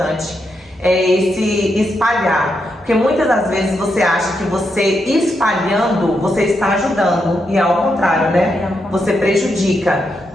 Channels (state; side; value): normal; both; correlation 0.82